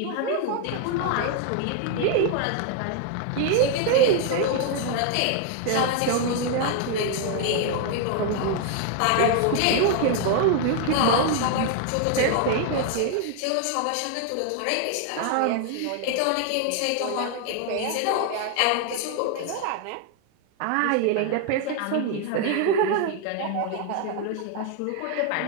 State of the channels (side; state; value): both; different; correlation 0.00